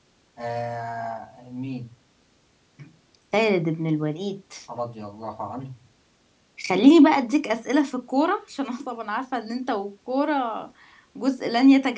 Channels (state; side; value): identical; both; correlation 1.00